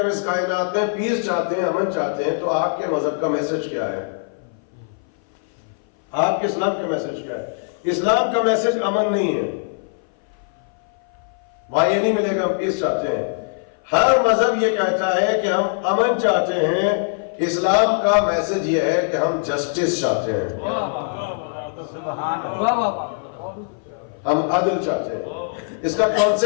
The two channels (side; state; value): right; silent; 59 dB below the other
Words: اس کائنات میں پیس چاہتے ہیں، امن چاہتے ہیں، تو آپ کے مذہب کا میسج کیا ہے؟ آپ کے اسلام کا میسج کیا ہے؟ اسلام کا میسج امن نہیں ہے، وہاں یہ نہیں ملے گا ہم پیس چاہتے ہیں. ہر مذہب یہ کہتا ہے کہ ہم امن چاہتے ہیں. اسلام کا میسج یہ ہے کہ ہم جسٹس چاہتے ہیں، ہم عدل چاہتے ہیں. اس کا